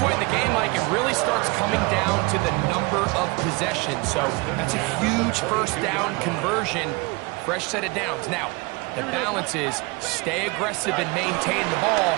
point in the game, Mike, it really starts coming down to the number of possessions. So that's a huge 1st down conversion. Fresh set of downs. Now, the balance is stay aggressive and maintain the ball,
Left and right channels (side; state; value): left; quieter; 26.3 dB